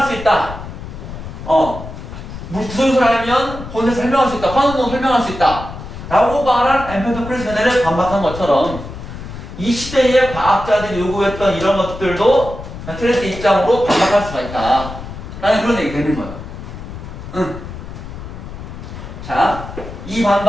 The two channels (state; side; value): noise; left; rumble, 11 dB below the sound